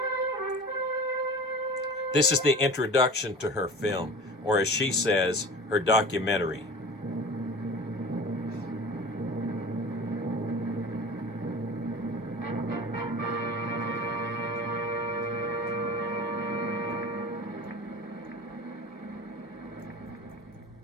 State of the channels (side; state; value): both; normal; correlation 0.37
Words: This is the introduction to her film, or as she says, her documentary.